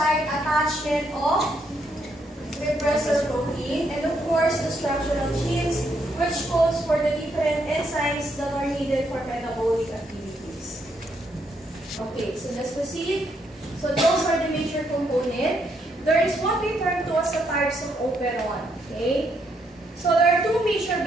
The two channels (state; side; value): normal; both; correlation 0.75